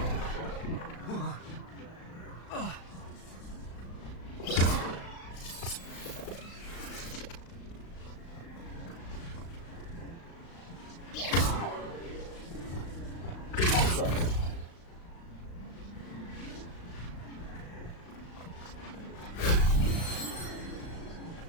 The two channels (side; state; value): right; late; 36 ms